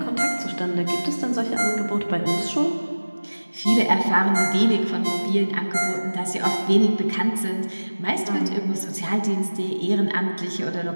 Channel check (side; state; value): both; inverted; correlation -1.00